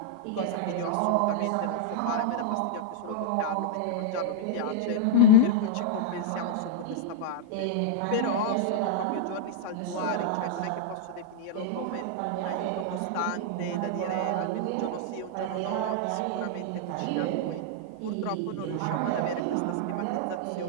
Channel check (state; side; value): different; both; correlation -0.01